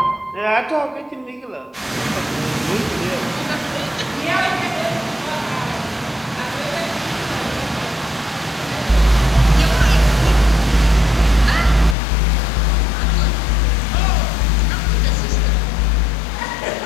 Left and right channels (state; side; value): drops out; right; at 12.0 s